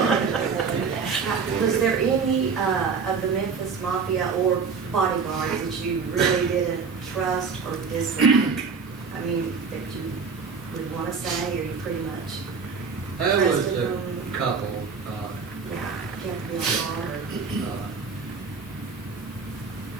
Was there any of the Memphis Mafia or bodyguards that you really didn't trust or dislike? I mean, that you would want to say, or you pretty much There was trusted a them? couple, Yeah, kept me on guard.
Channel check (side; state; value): left; quieter; 5.4 dB